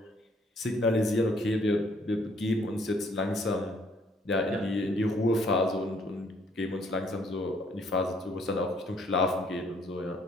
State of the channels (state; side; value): normal; both; correlation 0.65